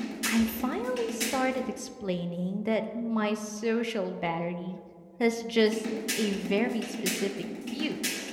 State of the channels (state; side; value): identical; both; correlation 1.00